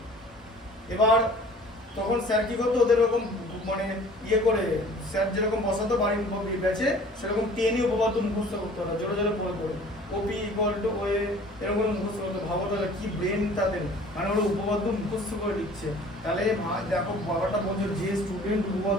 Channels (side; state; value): both; normal; correlation 0.49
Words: এবার তখন স্যার কি করতো, ওদের এরকম মানে ইয়ে করে, স্যার যেরকম বসাতো বাড়ির ব্যাচে, সেরকম টেনে উপপাদ্য মুখস্থ করতে হতো জোরে জোরে পড়ে পড়ে, ওপি ইকুয়াল টু ওয়ে এরকম মুখস্থ করতে। ভাবো তাহলে কি ব্রেন তাদের, মানে ওরা উপপাদ্য মুখস্থ করে লিখছে। তাহলে দেখো বাবাটা বলছো, যে স্টুডেন্ট